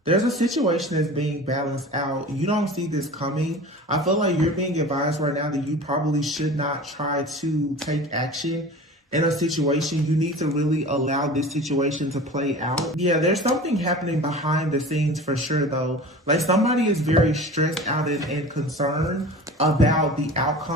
There's a situation that's being balanced out. You don't see this coming. I feel like you're being advised right now that you probably should not try to take action in a situation. You need to really allow this situation to play out. Yeah, there's something happening behind the scenes for sure though. Like somebody is very stressed out and concerned about the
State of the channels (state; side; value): normal; both; correlation 0.37